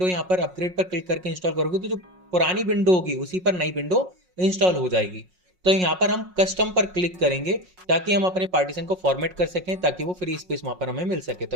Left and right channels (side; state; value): left; late; 5.5 ms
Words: यहाँ पर अपग्रेड पर क्लिक करके इंस्टॉल करोगे तो जो पुरानी विंडो होगी उसी पर नई विंडो इंस्टॉल हो जाएगी। तो यहाँ पर हम कस्टम पर क्लिक करेंगे ताकि हम अपने पार्टीशन को फॉर्मेट कर सकें, ताकि वो फ्री स्पेस वहां पर हमें मिल सके। तो